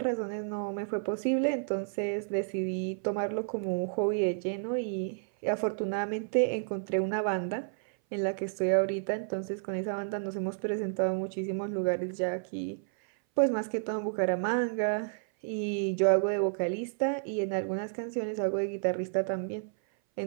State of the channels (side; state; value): left; silent; 57 dB below the other